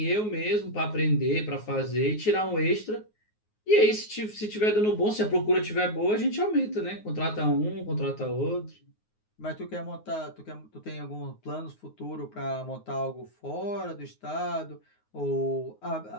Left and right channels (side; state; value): right; late; 9.5 ms